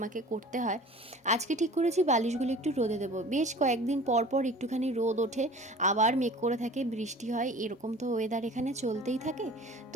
করতে হয়। আজকে ঠিক করেছি বালিশগুলো একটু রোদে দেবো, বেশ কয়েকদিন পর পর একটুখানি রোদ ওঠে, আবার মেঘ করে থাকে, বৃষ্টি হয়, এরকম তো ওয়েদার এখানে চলতেই থাকে।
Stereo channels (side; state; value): both; normal; correlation 0.43